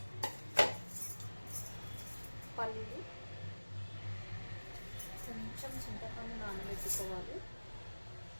పల్లీలు, కొంచెం చింతపండు నానబెట్టుకోవాలి.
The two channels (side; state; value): both; inverted; correlation -1.00